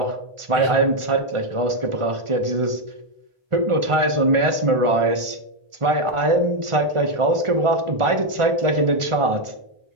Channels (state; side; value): late; left; 1.4 ms